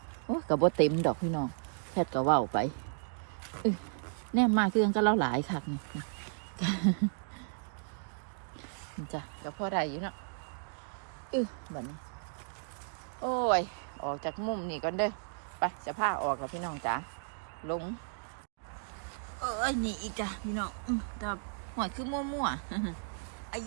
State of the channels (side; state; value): left; silent; digital silence